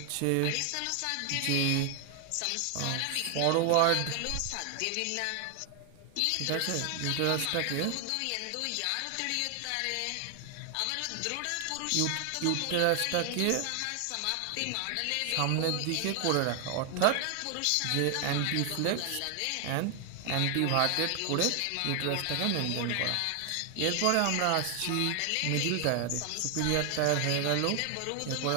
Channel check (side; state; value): both; different; correlation 0.00